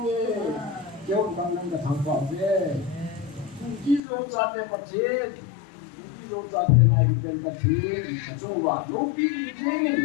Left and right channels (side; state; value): right; drops out; at 4.0 s